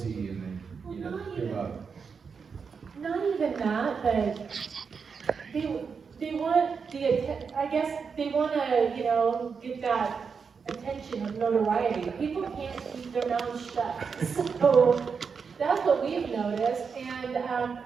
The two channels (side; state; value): left; quieter; 5.8 dB